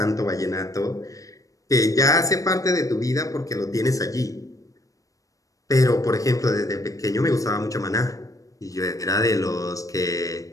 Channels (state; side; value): late; right; 0.16 ms